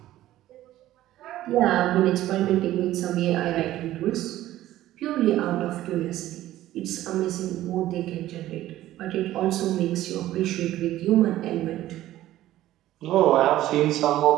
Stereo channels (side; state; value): left; quieter; 14.4 dB